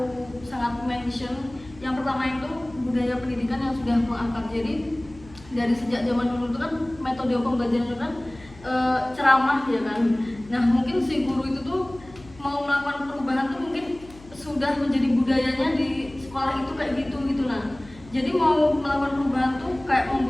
sangat mention. Yang pertama itu budaya pendidikan yang sudah mengangkat. Jadi dari sejak zaman dulu itu kan metode pembelajaran itu kan ceramah ya kan. Nah, mungkin si guru itu tuh mau melakukan perubahan tuh mungkin sudah menjadi budayanya di sekolah itu kayak gitu. Nah, jadi mau melakukan perubahan tuh kayak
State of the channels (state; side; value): noise; left; hum, 21 dB below the sound